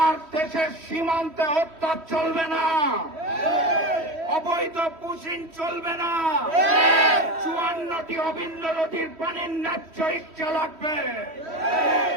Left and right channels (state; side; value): late; left; 3.1 ms